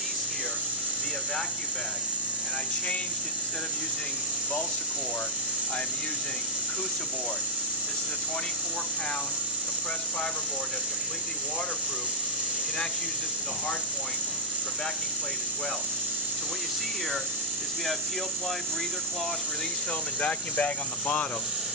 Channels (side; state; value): both; normal; correlation -0.09